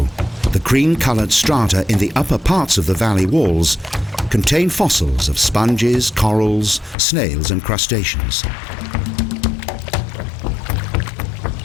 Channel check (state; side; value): drops out; right; at 7.0 s